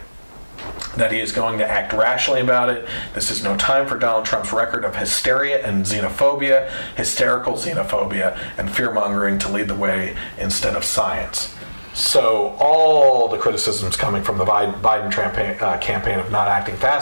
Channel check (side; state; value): both; inverted; correlation -1.00